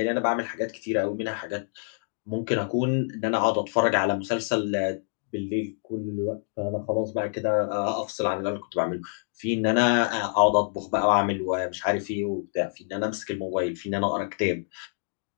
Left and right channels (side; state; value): right; silent; digital silence